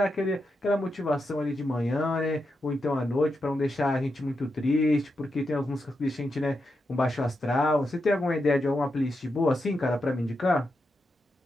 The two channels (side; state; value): both; normal; correlation 0.86